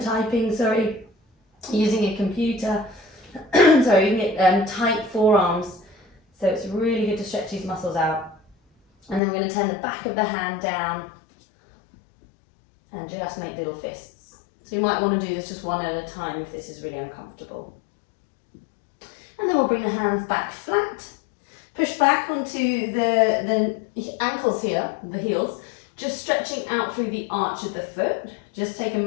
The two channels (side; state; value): right; drops out; at 9.2 s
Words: typing, using a computer. You can get tight forearms. So it's really good to stretch these muscles out. And then we're going to turn the back of the hand down and just make little fists. So you might want to do this just one at a time if this is really uncomfortable. And then we'll bring the hands back flat. Push back onto the ankles here, the heels, just stretching out through the arch of the foot. Just take a